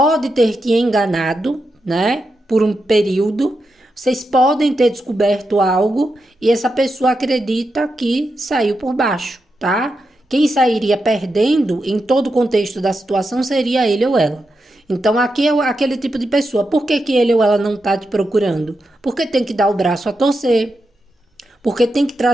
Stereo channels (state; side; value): normal; both; correlation 0.87